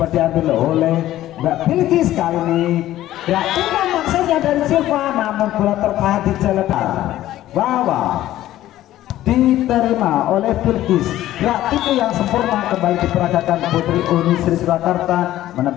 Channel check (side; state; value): right; quieter; 14.0 dB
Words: diambil oleh Mbak Bilkis. Kali ini ya ini maksudnya dari Silva, namun bola tertahan di jalan Wawa. Diterima oleh Bilkis. Gerak itu yang sempurna kembali diperagakan Putri Uni Sri Surakarta,